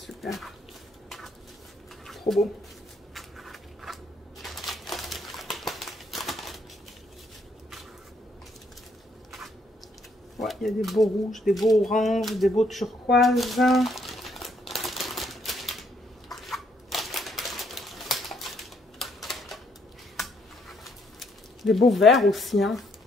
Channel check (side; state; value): both; normal; correlation 0.71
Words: Trop beau. Ouais, il y a des beaux rouges, des beaux oranges, des beaux turquoises. Des beaux verts aussi, hein.